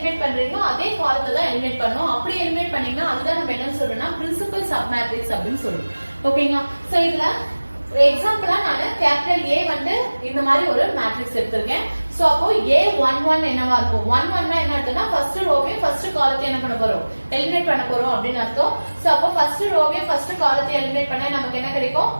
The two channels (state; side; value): inverted; both; correlation -1.00